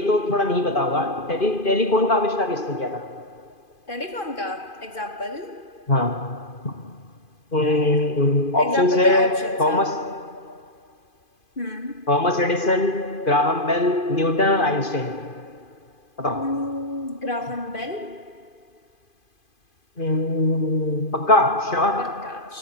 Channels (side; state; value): right; late; 2.5 ms